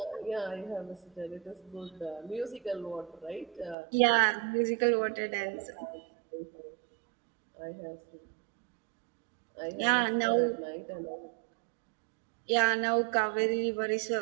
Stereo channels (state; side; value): drops out; left; at 3.8 s